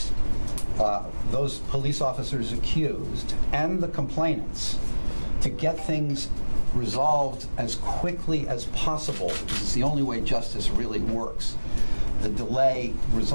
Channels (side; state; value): both; inverted; correlation -1.00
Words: those police officers accused, and the complainants to get things resolved as quickly as possible, because it's the only way justice really works. The delay